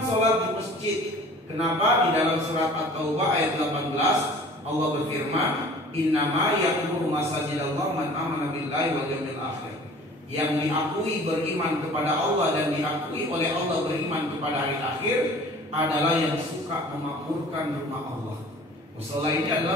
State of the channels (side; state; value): both; normal; correlation 0.47